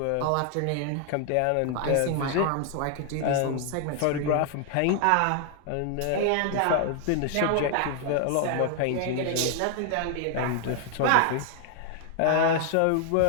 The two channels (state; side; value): different; both; correlation 0.00